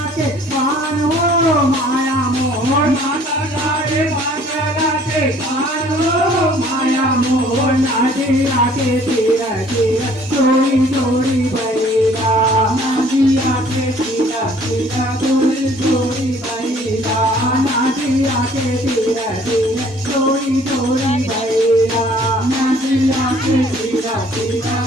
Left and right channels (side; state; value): both; normal; correlation 0.56